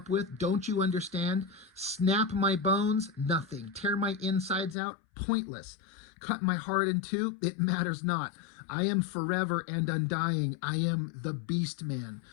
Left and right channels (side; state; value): right; drops out; at 4.8 s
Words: with? Don't you understand? Snap my bones? Nothing. Tear my insides out? Pointless. Cut my heart in two? It matters not. I am forever and undying. I am the Beastman.